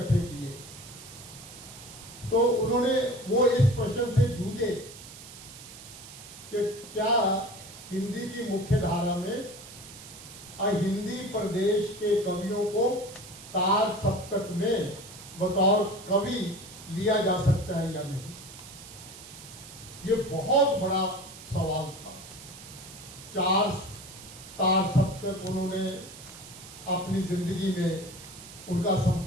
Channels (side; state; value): right; noise; hiss, 16 dB below the sound